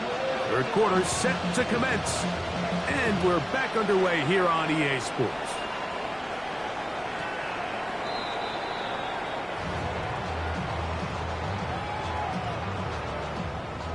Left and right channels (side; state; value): both; identical; correlation 1.00